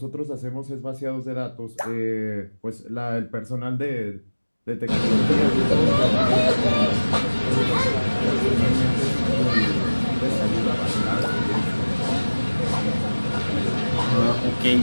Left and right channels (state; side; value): inverted; both; correlation -1.00